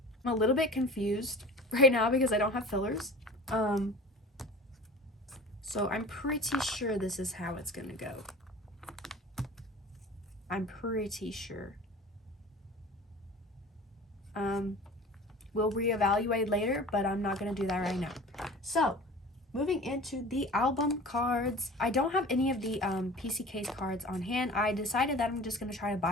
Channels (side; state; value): both; normal; correlation 0.40